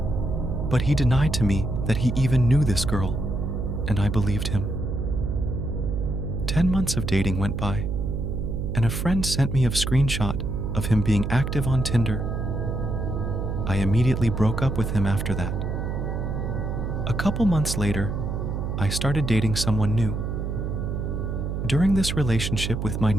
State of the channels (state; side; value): noise; right; hum, 2 dB below the sound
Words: but he denied to me that he even knew this girl, and I believed him. 10 months of dating went by, and a friend sent me a screenshot of him being active on Tinder. I immediately broke up with him after that. A couple months later, I started dating someone new. During this relationship with my